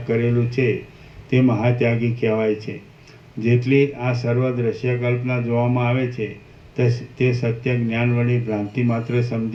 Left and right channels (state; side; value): identical; both; correlation 1.00